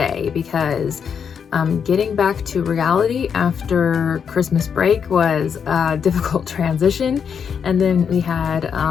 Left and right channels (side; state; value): right; quieter; 7.0 dB